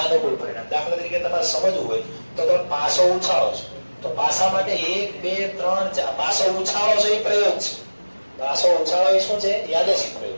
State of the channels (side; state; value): both; inverted; correlation -1.00